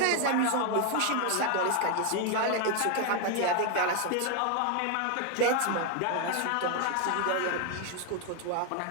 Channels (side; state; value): both; different; correlation 0.01